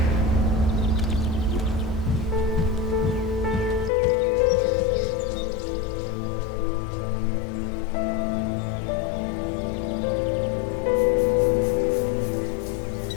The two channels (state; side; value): drops out; right; at 3.9 s